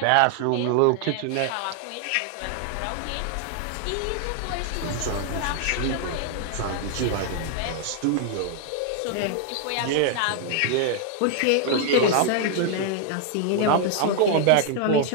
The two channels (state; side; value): different; both; correlation 0.00